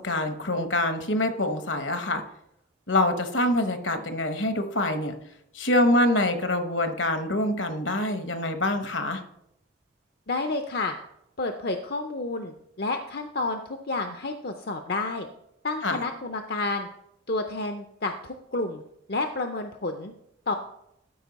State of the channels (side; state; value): both; normal; correlation 0.03